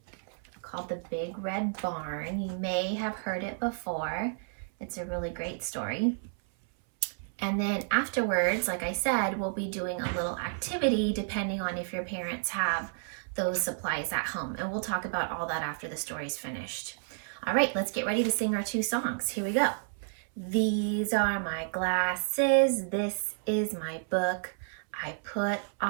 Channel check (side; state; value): left; silent; 57 dB below the other